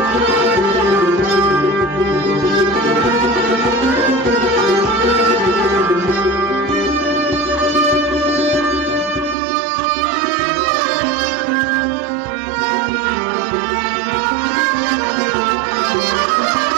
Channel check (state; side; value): drops out; left; at 9.3 s